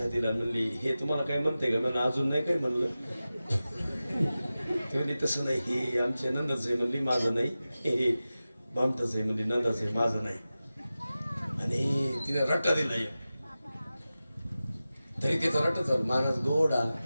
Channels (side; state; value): both; inverted; correlation -0.95